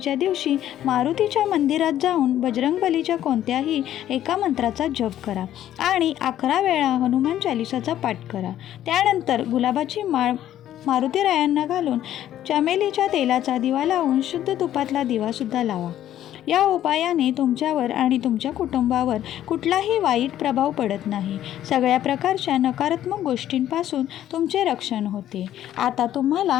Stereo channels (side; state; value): right; quieter; 12.0 dB